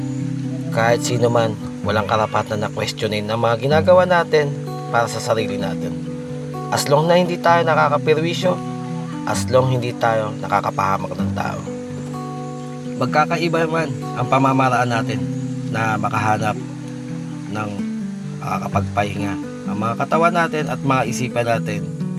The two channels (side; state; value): both; identical; correlation 1.00